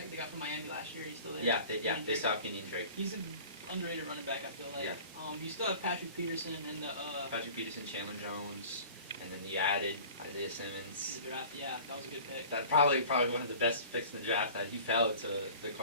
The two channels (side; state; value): both; inverted; correlation -0.43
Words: They got from Miami last year. He's still there. They still have Kenyon Drake. He's an underrated running back, I feel like. Yeah. You still have Patrick Peterson and the Patrick Peterson, Chandler Jones, and then you added Isaiah Simmons. The draft. Yeah, that was a good pick. That probably one of the best picks in the draft. That he fell to the